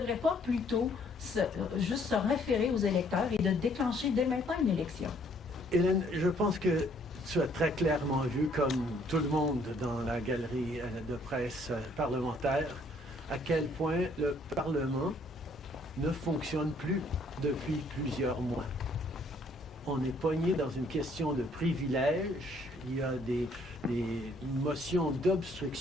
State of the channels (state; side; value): normal; both; correlation 0.64